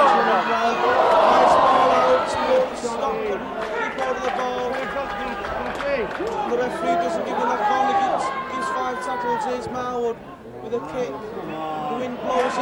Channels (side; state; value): both; identical; correlation 1.00